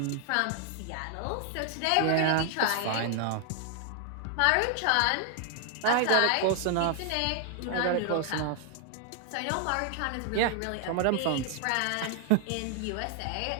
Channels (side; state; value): both; different; correlation 0.00